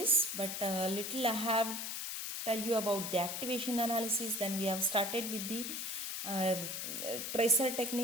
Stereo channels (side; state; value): left; noise; hiss, 4 dB below the sound